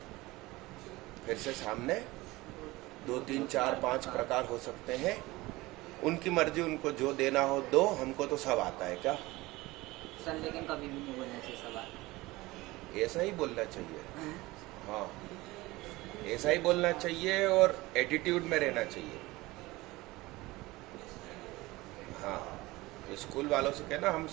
फिर से सामने 2 3 4 5 प्रकार हो सकते हैं। उनकी मर्जी, उनको जो देना हो दो, हमको तो सब आता है। क्या सर लेकिन कभी भी नहीं बोलना चाहिए सवाल। ऐसा ही बोलना चाहिए। हाँ, ऐसा ही बोलना चाहिए और एटीट्यूड में रहना चाहिए। हाँ, स्कूल वालों से कहना हम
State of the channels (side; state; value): left; quieter; 20.3 dB